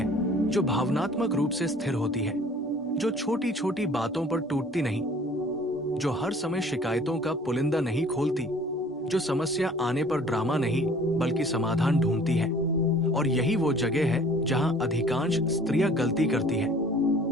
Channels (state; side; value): normal; both; correlation 0.51